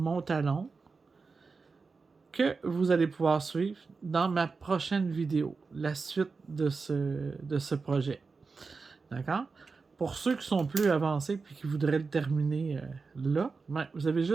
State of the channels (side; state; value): left; quieter; 4.5 dB